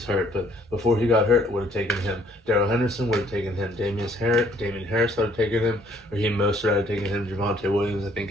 hurt, but before he got hurt, would have taken him. Darrell Henderson would have taken him. Damian Harris would have taken him. Raheem Mostert would have taken him. Javonte Williams, I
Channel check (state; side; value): normal; both; correlation 0.63